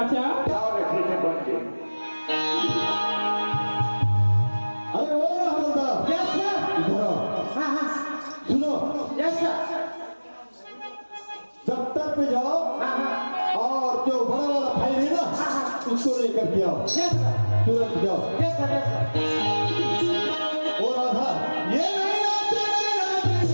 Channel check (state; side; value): inverted; both; correlation -1.00